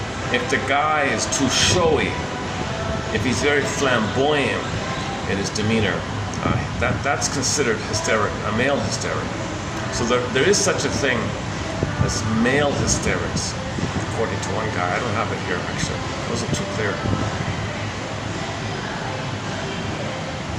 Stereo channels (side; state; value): both; identical; correlation 1.00